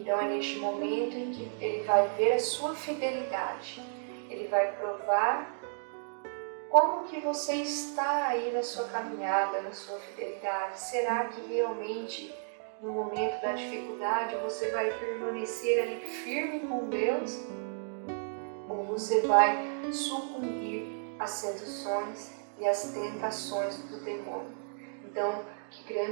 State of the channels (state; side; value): silent; left; digital silence